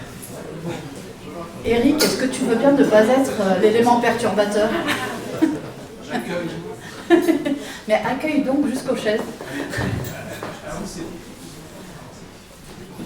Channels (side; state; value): both; identical; correlation 1.00